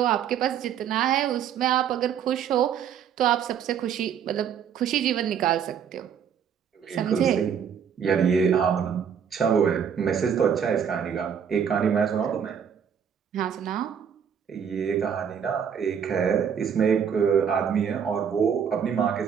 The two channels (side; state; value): left; quieter; 7.9 dB